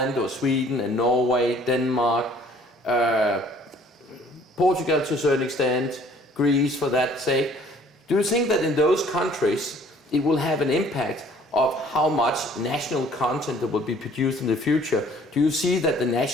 or Sweden and Norway, Denmark, Portugal to a certain extent, Greece for that sake. Do you think that in those countries it will have an impact of how much national content that will be produced in the future? Do you see that the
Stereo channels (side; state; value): both; normal; correlation 0.56